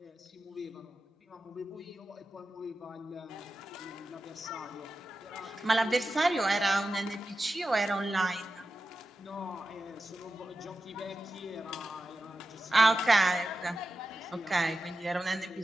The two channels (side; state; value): both; normal; correlation 0.92